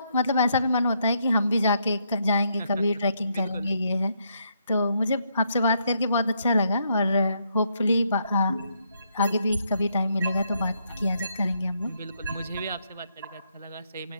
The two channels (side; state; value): both; inverted; correlation -0.76